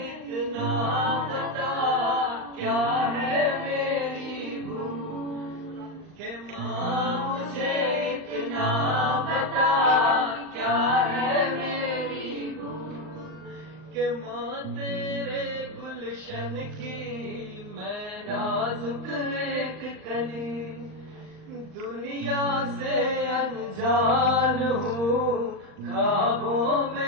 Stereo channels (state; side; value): late; left; 39 ms